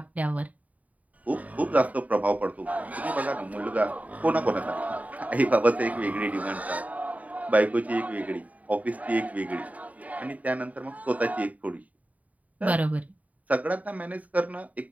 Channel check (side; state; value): left; late; 0.071 ms